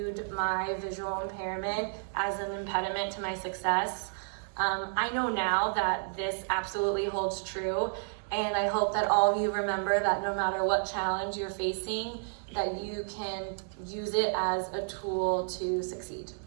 my visual impairment as an impediment to my success, I know now that this absolutely holds true, and I hope that all of you remember that no matter what challenge you're facing, that you can use it as a tool to succeed.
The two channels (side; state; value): left; silent; digital silence